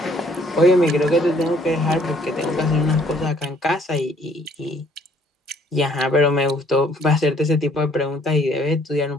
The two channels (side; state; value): both; normal; correlation 0.62